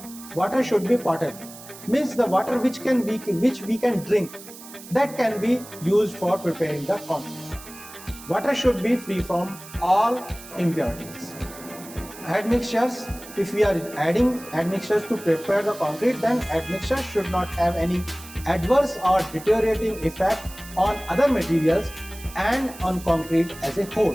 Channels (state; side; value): noise; right; hiss, 17 dB below the sound